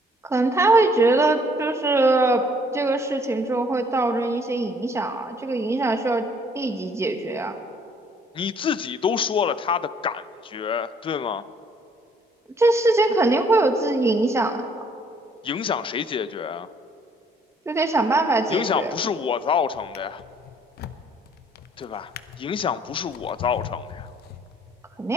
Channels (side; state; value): both; normal; correlation 0.62